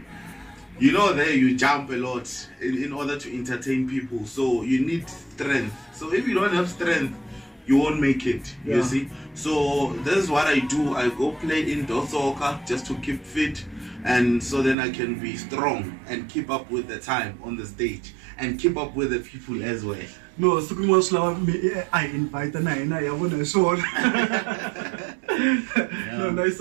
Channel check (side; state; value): left; drops out; at 14.8 s